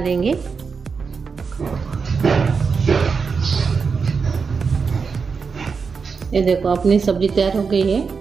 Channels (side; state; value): left; quieter; 5.3 dB